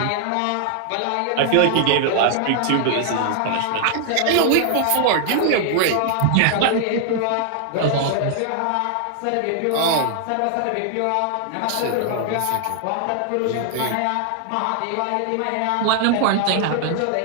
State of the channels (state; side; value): different; both; correlation -0.01